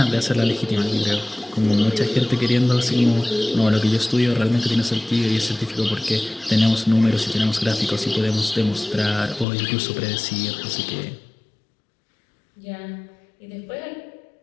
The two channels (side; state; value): right; drops out; at 9.5 s